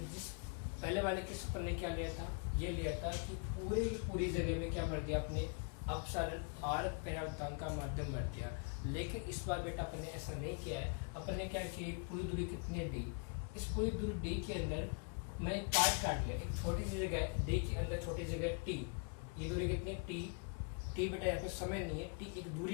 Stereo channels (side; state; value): right; quieter; 35.6 dB